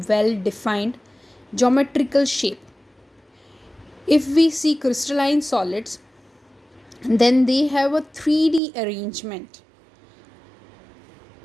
well defined geometrical shape. If we see crystalline solids, then they have a 3D arrangement.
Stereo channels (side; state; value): left; drops out; at 8.6 s